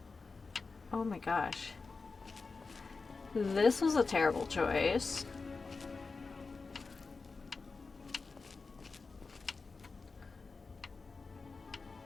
Oh my gosh. This was a terrible choice.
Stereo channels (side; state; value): right; quieter; 4.3 dB